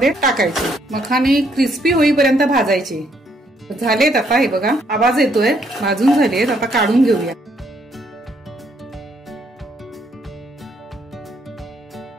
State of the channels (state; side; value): normal; both; correlation 0.71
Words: टाकायचे. मखाने क्रिस्पी होईपर्यंत भाजायचे. झालेत आता. हे बघा आवाज येतोय. भाजून झालेत. आता काढून घेऊया.